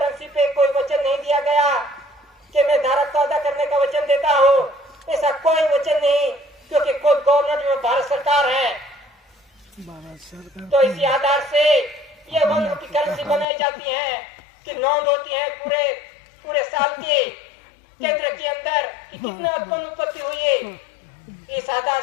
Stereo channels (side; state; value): right; drops out; at 13.5 s